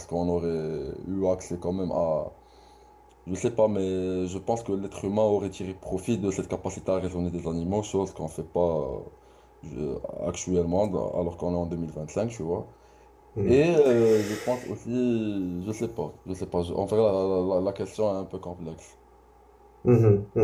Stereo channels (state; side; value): identical; both; correlation 1.00